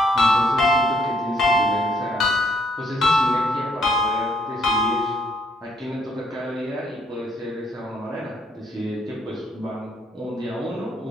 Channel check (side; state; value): both; normal; correlation 0.68